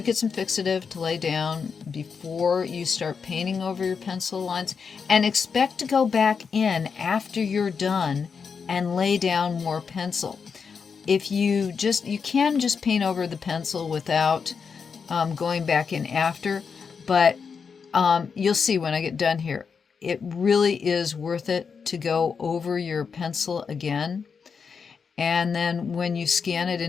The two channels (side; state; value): right; quieter; 5.9 dB